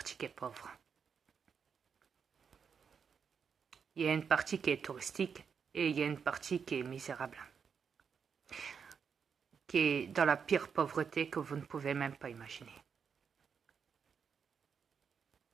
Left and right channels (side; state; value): left; quieter; 6.5 dB